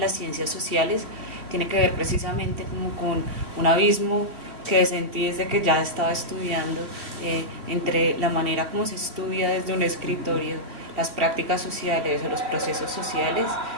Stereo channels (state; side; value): late; left; 2.5 ms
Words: ciencias sociales tiene que ver precisamente como con un abismo que sentí desde que ya estaba estudiando entre la manera como se estudia desde un escritorio las prácticas sociales o los procesos sociales